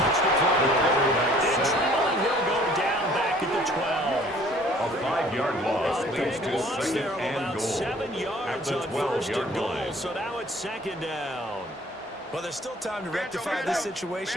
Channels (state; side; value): normal; both; correlation 0.55